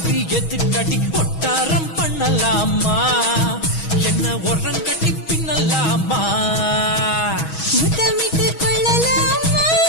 எதுக்கடி ஒட்டாரம் பண்ணலாமா என்ன உரம் கட்டி பின்னலாமா முத்தமிட்டு கொள்ளலாமா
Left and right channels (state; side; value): late; right; 6.2 ms